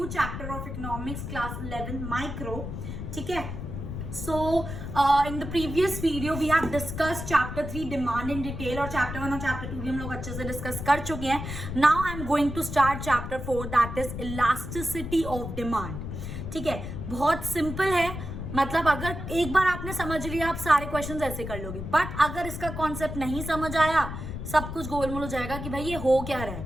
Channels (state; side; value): noise; left; rumble, 7 dB below the sound